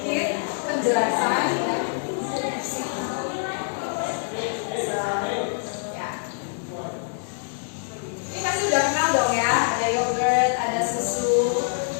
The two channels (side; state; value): right; silent; digital silence